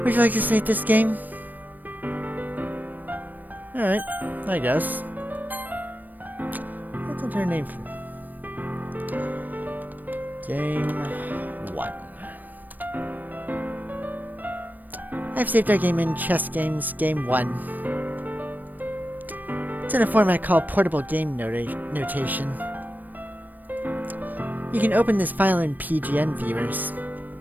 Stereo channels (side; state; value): left; late; 0.087 ms